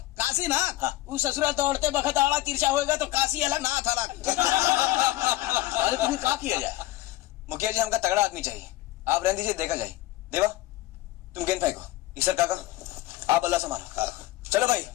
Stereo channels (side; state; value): right; quieter; 17.0 dB